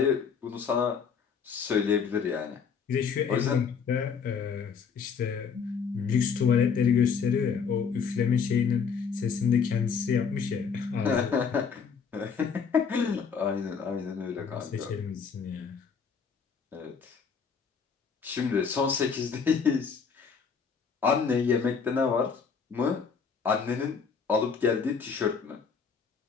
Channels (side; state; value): right; quieter; 6.1 dB